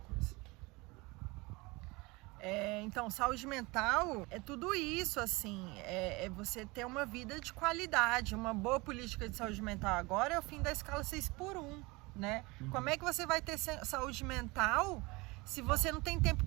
Então, saúde mental é tudo isso, assim, é você ter uma vida de qualidade. Uma boa política de saúde mental agora é o fim da escala 6x1, né? Como é que você vai ter saúde mental se você não tem tempo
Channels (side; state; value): left; quieter; 24.4 dB